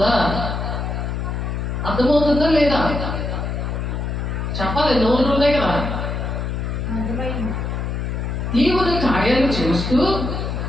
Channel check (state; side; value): noise; left; hum, 2 dB below the sound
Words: లేదా చెప్పాలి, నోళ్ళు ఉన్నాయి కదా. దేవుడి కార్యాలు చూస్తూ,